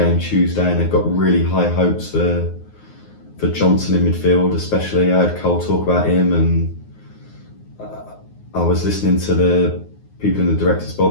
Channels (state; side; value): late; right; 9.6 ms